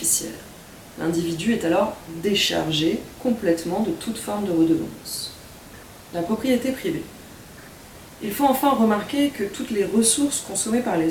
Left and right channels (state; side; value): identical; both; correlation 1.00